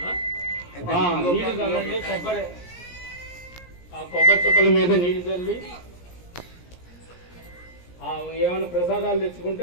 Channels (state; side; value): late; right; 17 ms